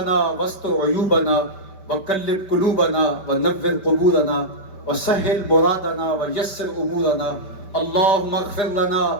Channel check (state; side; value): late; right; 5.2 ms